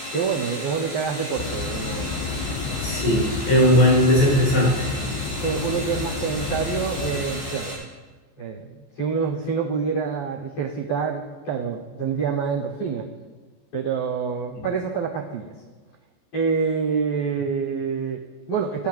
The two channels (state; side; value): late; right; 14 ms